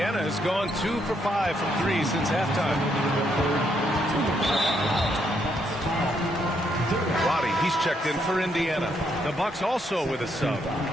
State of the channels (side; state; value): both; normal; correlation 0.75